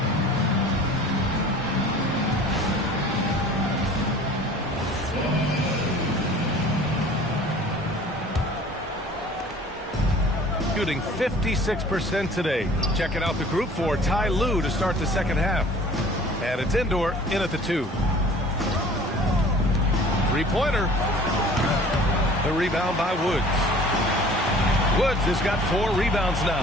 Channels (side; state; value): both; normal; correlation 0.48